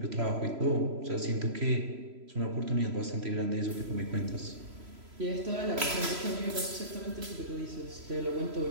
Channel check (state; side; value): late; left; 3.0 ms